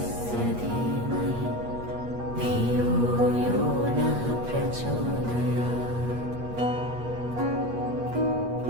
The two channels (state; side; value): late; left; 8.4 ms